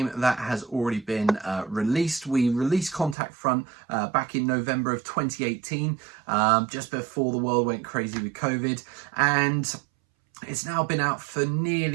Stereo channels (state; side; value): drops out; left; at 3.2 s